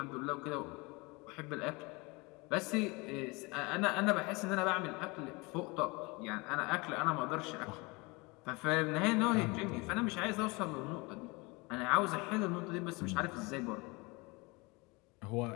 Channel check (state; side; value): quieter; right; 26.2 dB